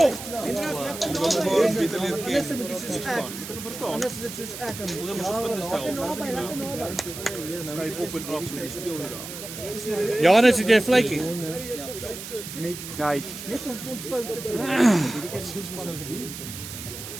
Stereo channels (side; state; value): right; noise; hiss, 10 dB below the sound